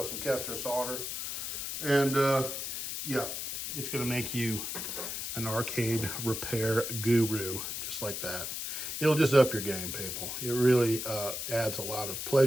some Kester solder, and yeah, it's gonna make you an arcade repair guru, just like that. It'll just up your game, people. It really adds a lot of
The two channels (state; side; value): noise; left; hiss, 4 dB below the sound